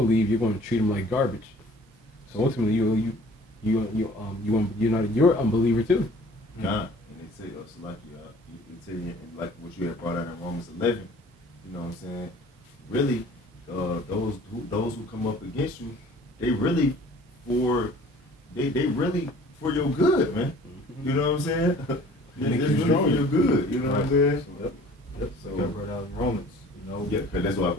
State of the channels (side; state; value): both; normal; correlation 0.50